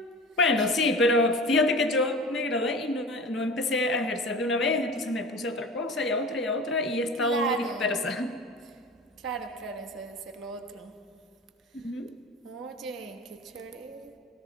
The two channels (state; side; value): normal; both; correlation 0.36